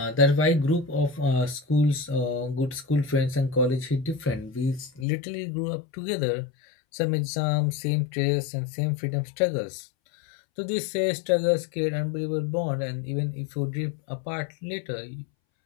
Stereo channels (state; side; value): drops out; right; at 5.1 s